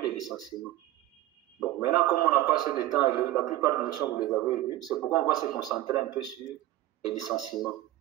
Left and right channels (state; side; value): quieter; left; 15.3 dB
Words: le licenciement. Bon, maintenant, comme on n'a pas assez de temps, et la plupart des notions, vous les avez vues, c'est pourquoi on va se concentrer un peu sur les licenciements.